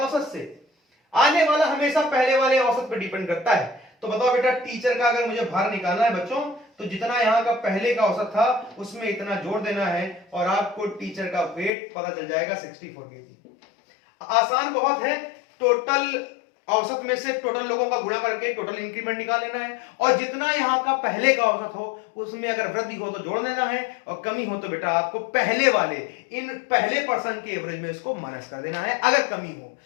से। आने वाला हमेशा पहले वाले औसत पर डिपेंड करता है। तो बताओ बेटा टीचर का अगर मुझे भार निकालना है बच्चों, तो जितना यहाँ का पहले का औसत था उसमें इतना जोड़ देना है, और आपको टीचर का वेट पता चल जाएगा 64 केजी। आसान बहुत है, टोटल औसत में से टोटल लोगों का गुणा करके टोटल इंक्रीमेंट निकाल लेना है, और जितना यहाँ का पहले का औसत हो उसमें अगर वृद्धि हो तो जोड़ देना है, और कमी हो तो बेटा आपको पहले वाले इन पहले पर्सन के एवरेज में इसको माइनस कर देना है। अगर कमी हो,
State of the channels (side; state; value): right; drops out; at 11.7 s